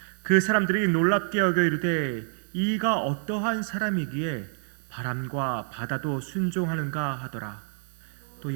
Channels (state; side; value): silent; left; 60 dB below the other